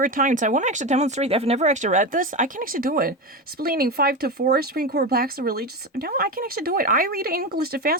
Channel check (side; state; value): both; normal; correlation 0.19